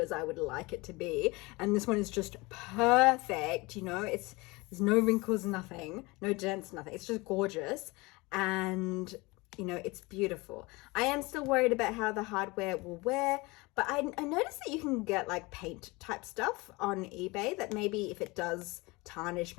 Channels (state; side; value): quieter; right; 24.1 dB